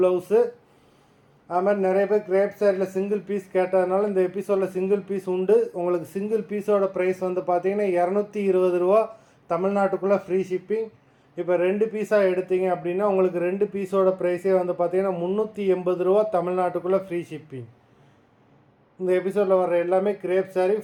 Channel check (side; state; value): both; identical; correlation 1.00